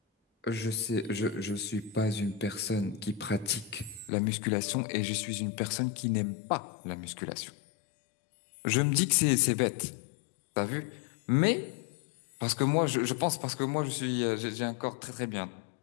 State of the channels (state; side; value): drops out; right; at 4.1 s